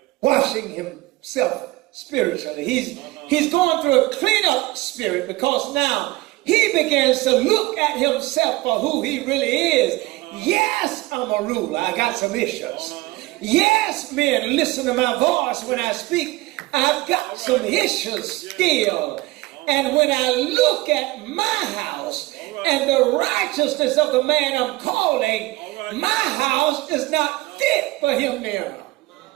Washing himself spiritually. He's going through a clean-up spirit because now he begins to look at himself for who he really is. Yes, I'm a ruler. I got some issues. Yes, men, listen to my voice when I speak. I've got some issues still. And when I look at my house and the righteousness of the man I'm calling, my house is not fit for him now.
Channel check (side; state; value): left; quieter; 20.2 dB